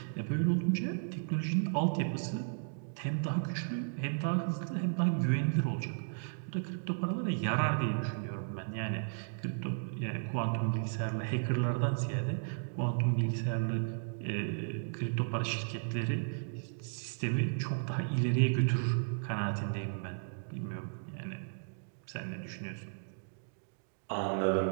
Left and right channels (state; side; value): silent; left; digital silence